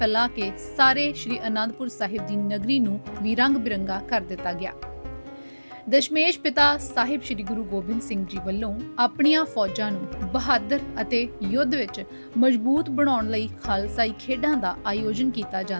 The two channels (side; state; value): both; inverted; correlation -1.00